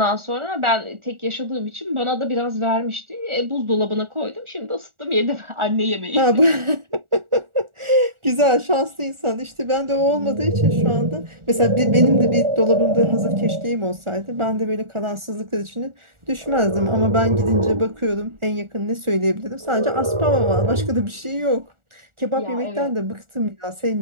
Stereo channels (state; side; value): late; left; 1.4 ms